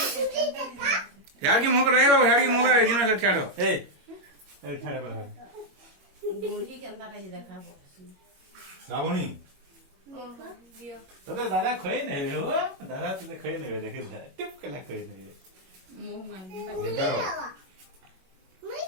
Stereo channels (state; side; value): late; left; 21 ms